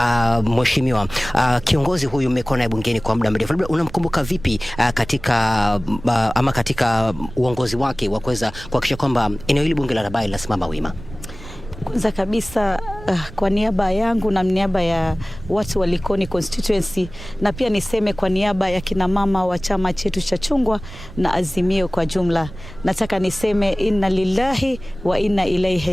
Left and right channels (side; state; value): right; noise; rumble, 15 dB below the sound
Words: mheshimiwa, kiongozi huyu mmekuwa naye bungeni kwa muda mrefu, labda unamkumbuka vipi katika uongozi wake wa kuweza kuhakikisha kwamba eneo hili bunge la Rabai linasimama wima? Kwanza kabisa kwa niaba yangu na niaba ya watu wa Likoni constituency, na pia niseme kwa niaba ya kina mama wa chama chetu cha chungwa na Azimio kwa jumla, nataka niseme inna lillahi wa inna